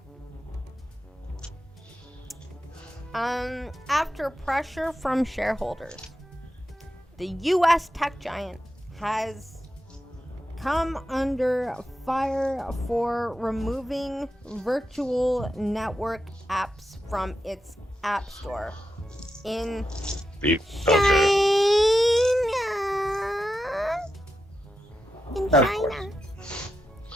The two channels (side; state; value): both; normal; correlation 0.87